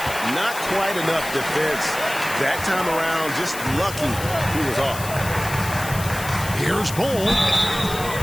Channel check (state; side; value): noise; left; hiss, 10 dB below the sound